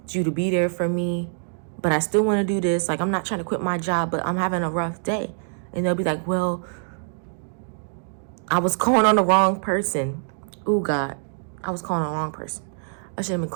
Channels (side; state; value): left; silent; digital silence